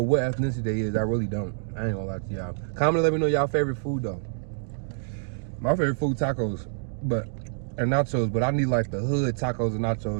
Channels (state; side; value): silent; left; digital silence